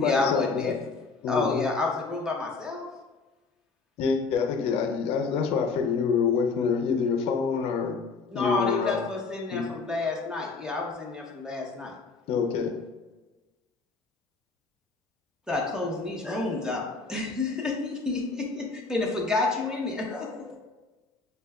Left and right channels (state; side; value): quieter; right; 4.3 dB